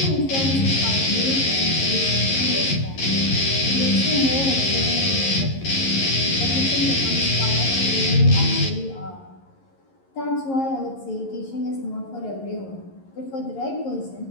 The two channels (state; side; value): late; right; 11 ms